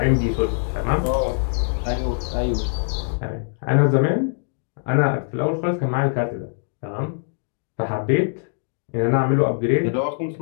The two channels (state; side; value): silent; right; digital silence